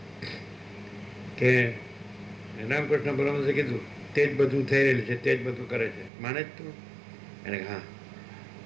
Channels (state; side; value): drops out; left; at 6.1 s